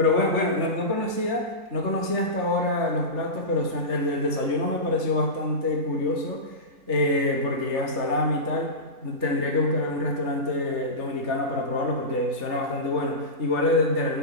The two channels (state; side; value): late; left; 3.4 ms